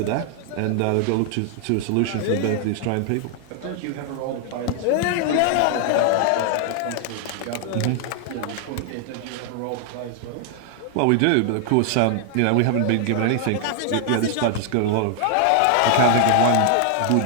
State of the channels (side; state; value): both; different; correlation 0.00